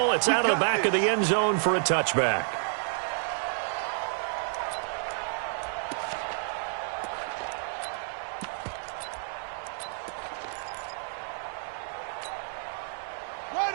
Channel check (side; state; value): left; silent; 58 dB below the other